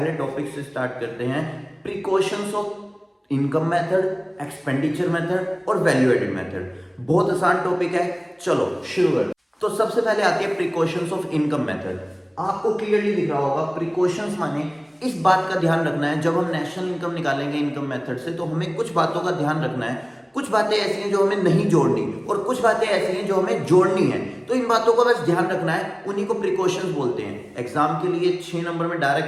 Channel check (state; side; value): identical; both; correlation 1.00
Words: टॉपिक से स्टार्ट करते हैं। Precautions of income method, expenditure method और वैल्यू एडेड मेथड। बहुत आसान टॉपिक है, चलो शुरू करते। तो सबसे पहले आती है प्रिकॉशंस ऑफ इनकम मेथड। आपको क्लियरली दिख रहा होगा, प्रिकॉशंस माने इस बात का ध्यान रखना है, जब हम नेशनल इनकम निकालेंगे इनकम मेथड से, तो हमें कुछ बातों का ध्यान रखना है। कुछ बातें ऐसी हैं जो हमें नहीं जोड़नी और कुछ बातें ऐसी हैं जो हमें जोड़नी है। तो इन बातों का बस ध्यान रखना है, उन्हीं को प्रिकॉशंस बोलते हैं। एग्जाम के लिए 6 नंबर में